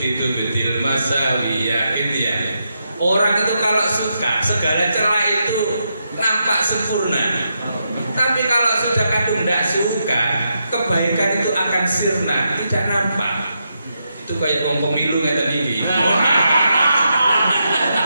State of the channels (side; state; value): both; inverted; correlation -0.83